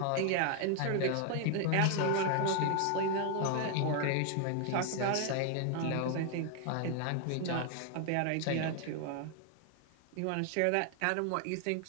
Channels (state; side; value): different; both; correlation 0.00